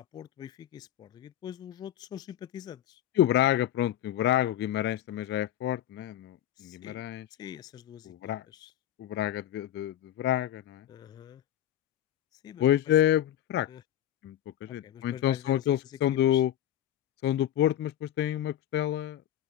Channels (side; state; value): right; quieter; 11.8 dB